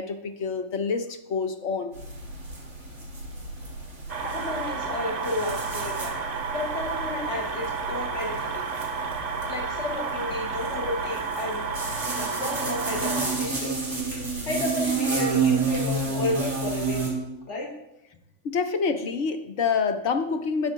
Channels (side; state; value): right; late; 3.5 ms